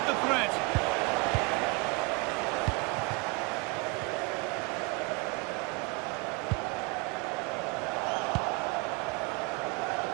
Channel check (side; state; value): left; quieter; 27.4 dB